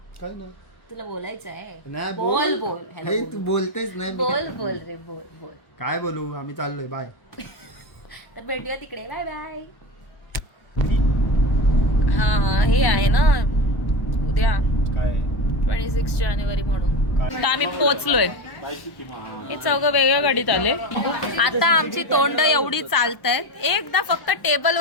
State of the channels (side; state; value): right; late; 1.1 ms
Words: नाही तुला बोलायचं आहे. बोल बोल. हॅलो, तू बोलतेच नाही. बोल बोल रे, बोल बोल. काय बोलू, आम्ही चाललोय. बाय. तर भेटूया तिकडे. Bye bye. हा, हे आहे ना उद्या काय 26 जानेवारी म्हणून. तर आम्ही पोचलोय. हे चौघं वेगळ्या गाडीत आले. आता आमची तोंड एवढी चालतायत, एकदा फक्त टेबल